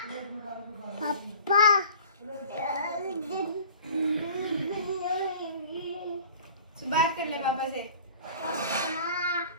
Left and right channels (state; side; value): inverted; both; correlation -0.44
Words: पापा बात कर ले पापा से।